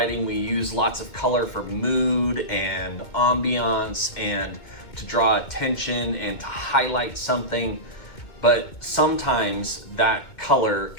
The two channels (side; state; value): right; late; 2.2 ms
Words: we use lots of color for mood and ambiance and to draw attention and to highlight something, but sometimes that color